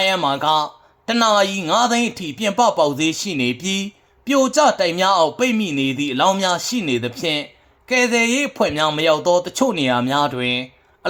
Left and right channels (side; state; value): both; identical; correlation 1.00